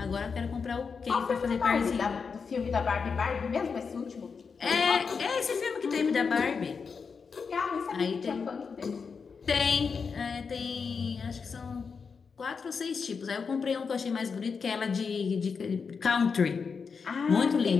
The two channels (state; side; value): quieter; right; 5.5 dB